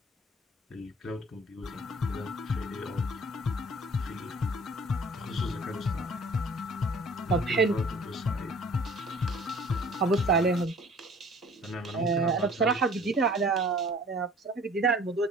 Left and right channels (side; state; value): both; normal; correlation 0.50